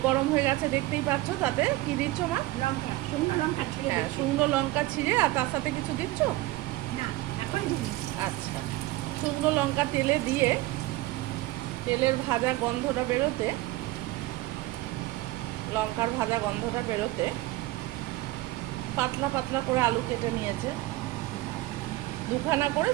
গরম হয়ে গেছে দেখতেই পাচ্ছ। তাতে কি দিচ্ছ মা? লঙ্কা, শুকনো লঙ্কা ছিঁড়ে হ্যাঁ, দিচ্ছি। শুকনো লঙ্কা ছিঁড়ে, আর তার সাথে কিছু দিচ্ছ? না, এখন দিই। আচ্ছা, শুকনো লঙ্কা তেলে দিয়ে তেলের ভাজা গন্ধটা বেরোতে, লঙ্কার ভাজা গন্ধটা বেরোতে পাতলা পাতলা করে আলু কেটে নিয়েছে, দুখানা করে,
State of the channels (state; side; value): quieter; left; 18.2 dB